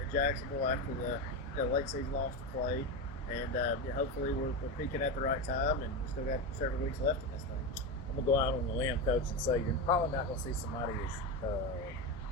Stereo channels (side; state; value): both; normal; correlation 0.17